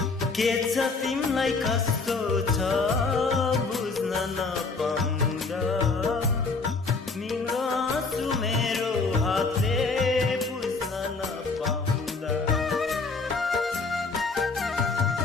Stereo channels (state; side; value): quieter; right; 4.1 dB